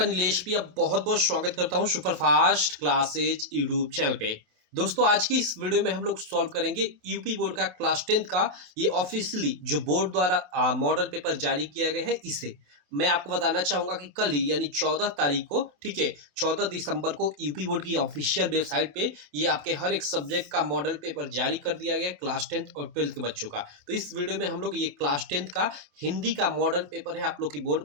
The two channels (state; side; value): late; left; 28 ms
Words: नीलेश भी अब बहुत-बहुत स्वागत करता हूँ सुपरफास्ट क्लासेज यूट्यूब चैनल पे। दोस्तों, आज की इस वीडियो में हम लोग सॉल्व करेंगे यूपी बोर्ड का क्लास 10th का ये ऑफिशियली जो बोर्ड द्वारा मॉडल पेपर जारी किया गया है इसे। मैं आपको बताना चाहूँगा कि कल ही यानी 14 तारीख को, ठीक है, 14 दिसंबर को यूपी बोर्ड की ऑफिशियल वेबसाइट पे ये आपके हर एक सब्जेक्ट का मॉडल पेपर जारी कर दिया गया है क्लास 10th और 12th के बच्चों का। तो इस वीडियो में हम लोग ये क्लास 10th का हिंदी का मॉडल पेपर है आप लोग की बोर्ड